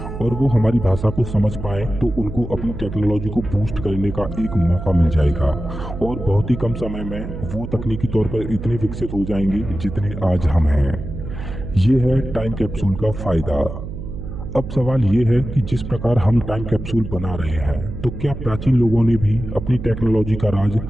और वो हमारी भाषा को समझ पाए, तो उनको अपनी टेक्नोलॉजी को बूस्ट करने का एक मौका मिल जाएगा और बहुत ही कम समय में वो तकनीकी तौर पर इतने विकसित हो जाएंगे जितने आज हम हैं। ये है टाइम कैप्सूल का फायदा। अब सवाल ये है कि जिस प्रकार हम टाइम कैप्सूल बना रहे हैं, तो क्या प्राचीन लोगों ने भी अपनी टेक्नोलॉजी का राज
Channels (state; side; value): noise; right; hum, 8 dB below the sound